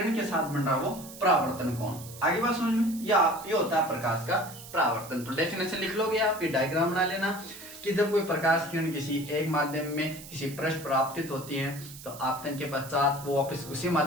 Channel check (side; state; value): right; noise; hiss, 15 dB below the sound